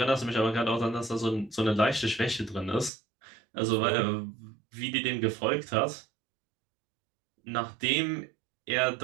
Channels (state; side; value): drops out; left; at 2.9 s